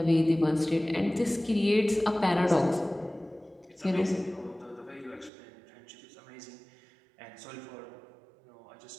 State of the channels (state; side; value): drops out; left; at 5.3 s